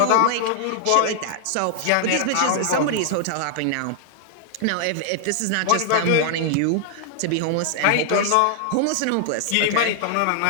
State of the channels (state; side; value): different; both; correlation 0.00